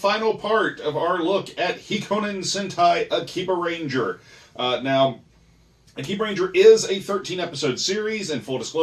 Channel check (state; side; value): identical; both; correlation 1.00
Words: part of our look at Hikonin Sentai Akibaranger. Now, Akibaranger is a 13-episode series. In full